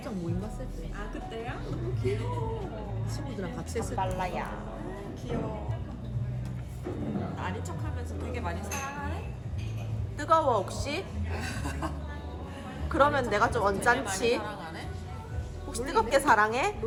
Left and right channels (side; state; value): both; identical; correlation 1.00